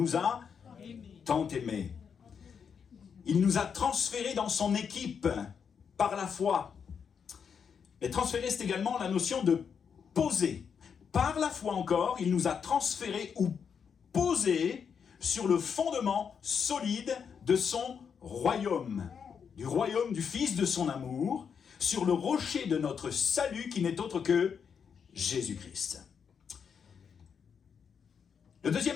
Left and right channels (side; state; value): right; quieter; 6.8 dB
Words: a tant aimés. Il nous a transférés dans son équipe par la foi. Et transférer, c'est également la notion de poser. Par la foi encore, il nous a transférés ou posés sur le fondement solide de son royaume, du royaume du Fils de son amour, sur le rocher de notre salut qui n'est autre que Jésus-Christ. Le